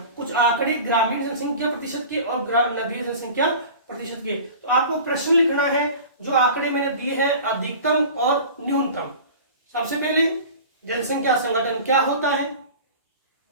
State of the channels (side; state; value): both; inverted; correlation -0.38